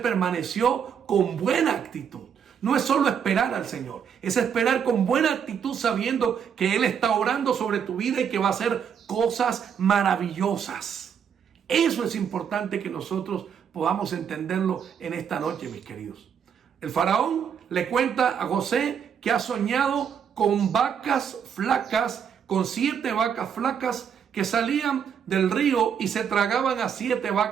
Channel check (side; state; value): left; quieter; 7.7 dB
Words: con buena actitud. No es solo esperar al Señor, es esperar con buena actitud sabiendo que Él está orando sobre tu vida y que va a hacer cosas maravillosas. Eso es importante que nosotros podamos entenderlo en esta noche, mis queridos. El faraón le cuenta a José que ha soñado con vacas flacas, con 7 vacas flacas que salían del río y se tragaban a 7